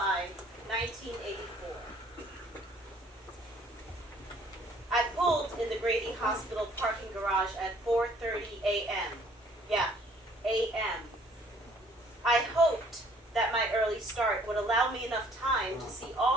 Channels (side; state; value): both; normal; correlation 0.59